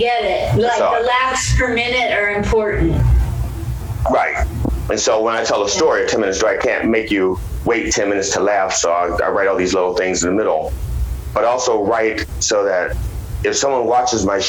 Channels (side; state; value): both; identical; correlation 1.00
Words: it. Like the laughs per minute are important. Right. And so when I tell a story, a 10-minute story, I can't make you wait 10 minutes to laugh. So I write all these little things in the middle, but also write so that if someone watches my